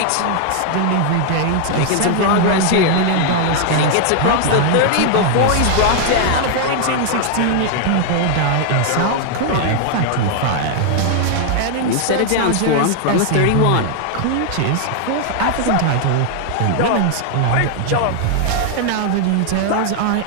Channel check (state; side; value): different; both; correlation 0.00